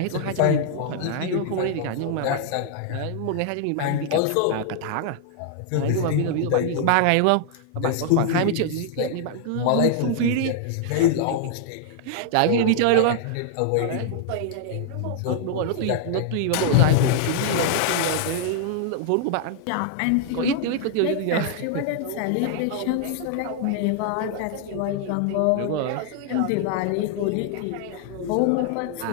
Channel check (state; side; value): different; both; correlation -0.01